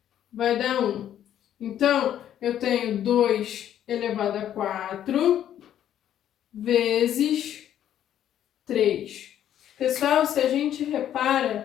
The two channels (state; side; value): quieter; right; 10.7 dB